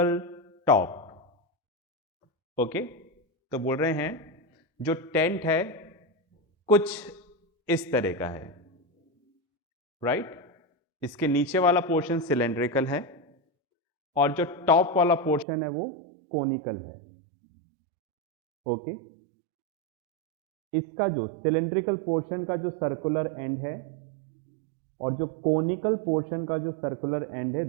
top। Okay, तो बोल रहे हैं जो टेंट है कुछ इस तरह का है, राइट। इसके नीचे वाला पोर्शन सिलेंड्रिकल है और जो टॉप वाला पोर्शन है वो कोनिकल है। ओके, इसका जो सिलेंड्रिकल पोर्शन का जो सर्कुलर एंड है और जो कोनिकल पोर्शन का जो सर्कुलर एंड है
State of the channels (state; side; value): drops out; left; at 15.5 s